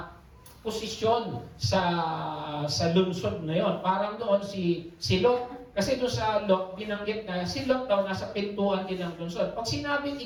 posisyon sa lungsod na yon. Parang doon si Lot. Kasi doon sa Lot, binanggit na si Lot daw nasa pintuan din ng lungsod. Pag sinabing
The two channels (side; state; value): both; identical; correlation 1.00